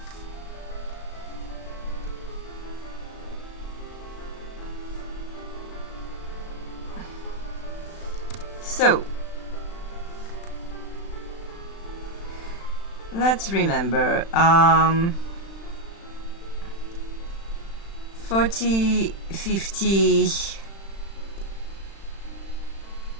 So... let's remember, 40, 50,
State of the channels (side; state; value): right; late; 36 ms